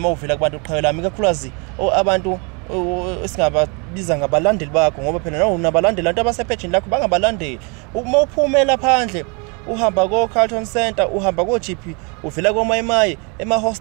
mawuvela kubantu qhawe lami kakhulukazi abantu esingababiza ngabalandeli bakho ngoba phela nawo unabalandeli abantu abasepage lakho bangabalandeli uma uphumela phandle uhamba ko Carlton Center uhamba ko GP uvela ko Mayimayi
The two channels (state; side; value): quieter; left; 32.9 dB